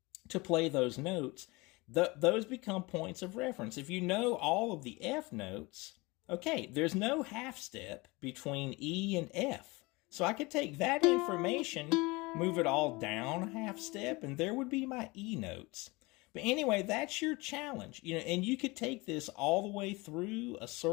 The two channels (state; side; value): quieter; right; 24.2 dB